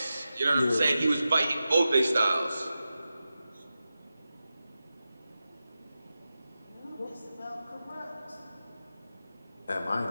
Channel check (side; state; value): both; inverted; correlation -0.92